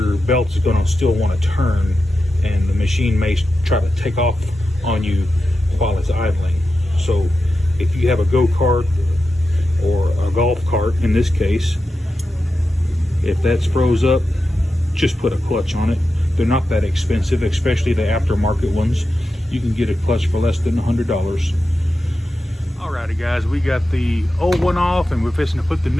belt is going to still want to turn, and the machine may try to take off on you while it's idling. So if you have a go-kart or a golf cart in this case, if that's froze up, just put a clutch on it. They're not that expensive, especially the aftermarket ones. You can get a clutch for less than $100. Alrighty guys, we got the old one off and we're fixing to put the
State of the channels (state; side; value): normal; both; correlation 0.90